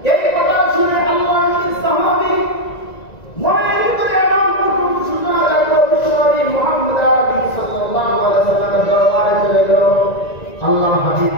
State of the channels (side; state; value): right; late; 1.9 ms